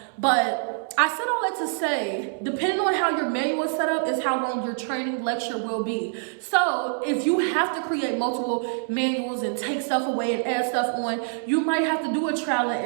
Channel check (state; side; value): silent; left; 62 dB below the other